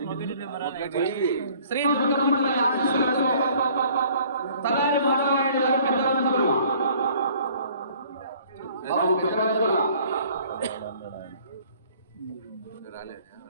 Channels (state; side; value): inverted; both; correlation -0.55